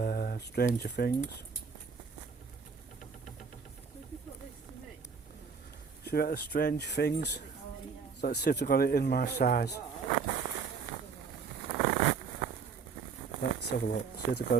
Stranger Things. Should we get the Strange Things? So let's see if they've got it in my size. Let's have a look. See if they've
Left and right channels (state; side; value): quieter; left; 5.6 dB